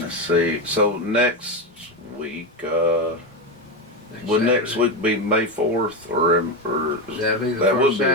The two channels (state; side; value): normal; both; correlation 0.14